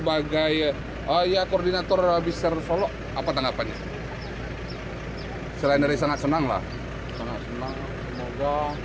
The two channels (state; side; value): identical; both; correlation 1.00